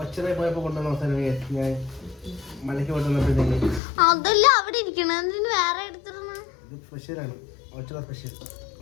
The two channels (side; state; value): right; drops out; at 3.8 s